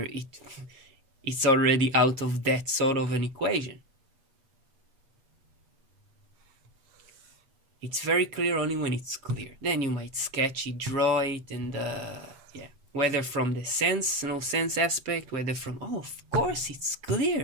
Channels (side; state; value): left; late; 7.3 ms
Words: it's already out of that sort of an equation. It's very clear only when it's clear. Then you might sketch it, draw it, and whether from the sense, no sense aspect, whether from, of course it's